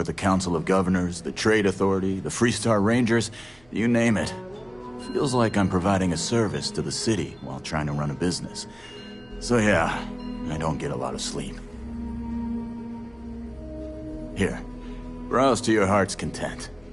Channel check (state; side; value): noise; right; hum, 29 dB below the sound